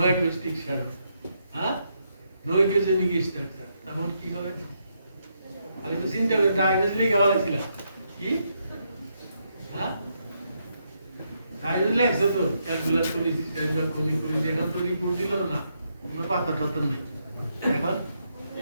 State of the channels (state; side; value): inverted; both; correlation -0.78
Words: acoustic shadow no echogenic structure তখন কি হবে আমি তো চিন্তা করে ডায়াগনোসিস লিখে বলেছিলাম কি ডায়াগনোসিস লেখছো তো ক্যালকুলাস কোলিসিস্টেম যখন এখন তো রিপোর্ট দিল না কোনো পাতা টাতা নেই এখন